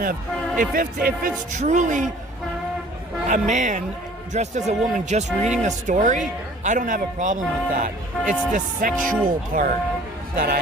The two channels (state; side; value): normal; both; correlation 0.51